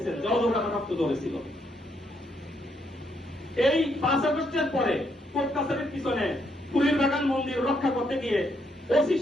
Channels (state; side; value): normal; both; correlation 0.75